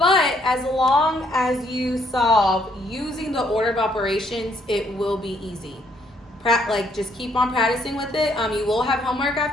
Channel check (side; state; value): both; normal; correlation 0.69